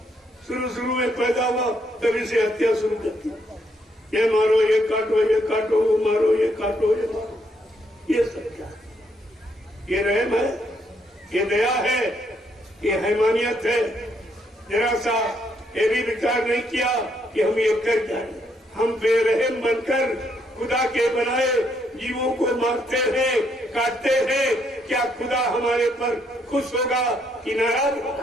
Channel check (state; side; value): normal; both; correlation 0.73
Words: शुरू में पैदा हुआ तभी से हत्या शुरू कर दी, ये मारो ये काटो, वो मारो ये काटो ये मारो। ये सब क्या? ये रहम है, ये दया है, ये हैमानियत है। जरा सा ये भी विचार नहीं किया कि हम ये कर जाए। हम बेरहम बनकर खुदा के बनाए जीवों को मारते हैं, काटते हैं। क्या खुदा हमारे पर खुश होगा कि नाराज